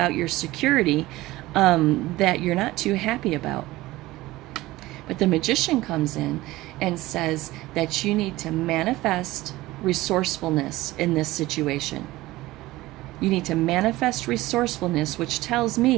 your security that you're not too happy about. But the Magician comes in and says that you need to manifest resourcefulness in this situation. You need to manifest resourcefulness, which tells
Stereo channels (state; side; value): quieter; left; 18.2 dB